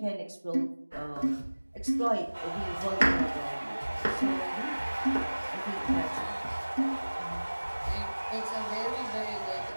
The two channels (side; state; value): both; inverted; correlation -1.00